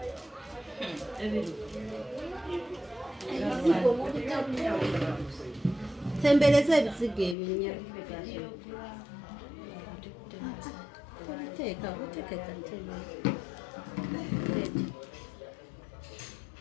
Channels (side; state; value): right; drops out; at 7.4 s